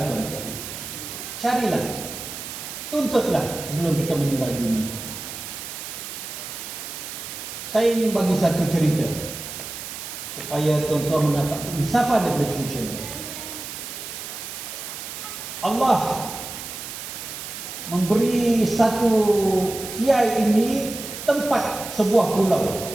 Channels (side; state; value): right; noise; hiss, 9 dB below the sound